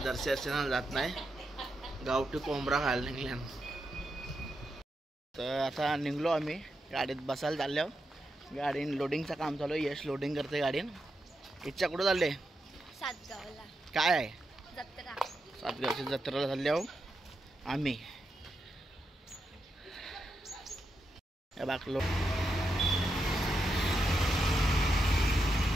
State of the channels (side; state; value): both; normal; correlation 0.85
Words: जात नाही, गावठी कोंबडा खायला निघल्या। तर आता निघलो आम्ही, गाडीत बसायला चाललो। गाडी लोडिंगचं काम चालू आहे, यश लोडिंग करते गाडीन। इच्छा कुठं चालले? सातगावला। काय आहे? जत्रा। सातगावच्या जत्रेला चाललो आम्ही। बाकलो